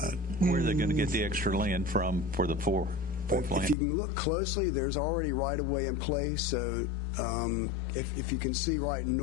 Where are they going to get the extra land from for the fourth lane? If you can look closely, there's already right-of-way in place. So if you can see right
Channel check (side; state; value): right; drops out; at 3.8 s